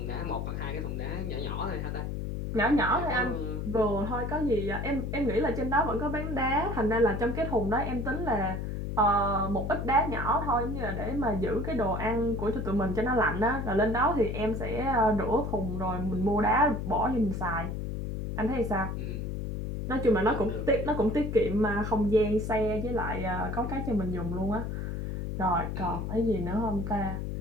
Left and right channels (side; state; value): left; noise; hum, 4 dB below the sound